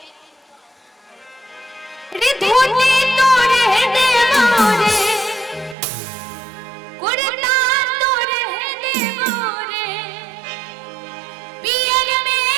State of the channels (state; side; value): drops out; left; at 5.8 s